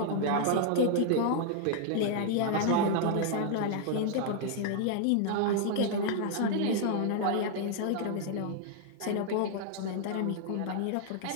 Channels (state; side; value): different; both; correlation -0.01